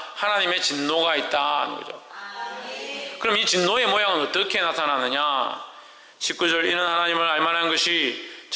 하나님의 진노가 있다는 거죠. 그럼 이 진노의 모양은 어떻게 나타나느냐? 19절 이는 하나님을 알만한 것이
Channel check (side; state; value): both; identical; correlation 1.00